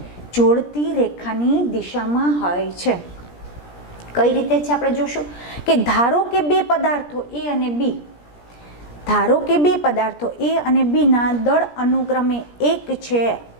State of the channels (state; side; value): late; right; 17 ms